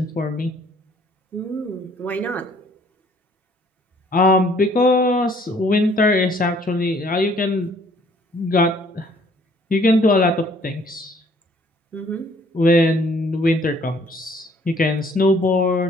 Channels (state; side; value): normal; both; correlation 0.60